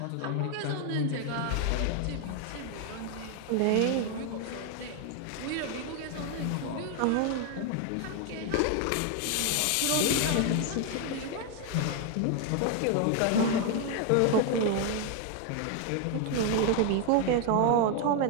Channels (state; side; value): different; both; correlation 0.01